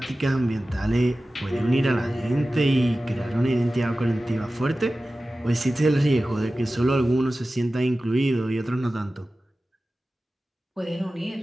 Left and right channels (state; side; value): normal; both; correlation 0.95